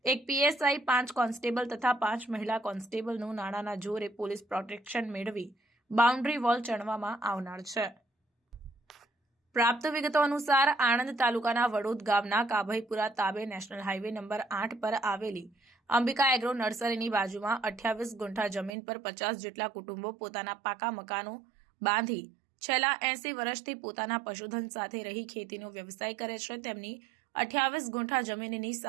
એક પીએસઆઈ 5 કોન્સ્ટેબલ તથા 5 મહિલા કોન્સ્ટેબલનું નાણાના જોરે પોલીસ પ્રોટેક્શન મેળવી બાઉન્ડ્રી વોલ ચણવામાં આવનાર છે। પ્રાપ્ત વિગતો અનુસાર આણંદ તાલુકાના વડોદ ગામના કાભઈપુરા તાબે નેશનલ હાઈવે નંબર 8 પર આવેલી અંબિકા એગ્રો નર્સરીની બાજુમાં 28 ગુંઠા જમીન પર 50 જેટલા કુટુંબો પોતાના પાકા મકાનો બાંધી છેલ્લા 80 વર્ષથી પોતાના પશુધન સાથે રહી ખેતીનો વ્યવસાય કરે છે। તેમની 28 ગુંઠા જમીનની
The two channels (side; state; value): left; drops out; at 18.7 s